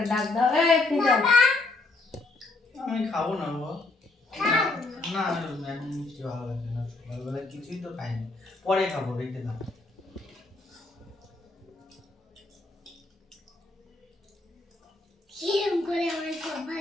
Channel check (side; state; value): right; quieter; 3.3 dB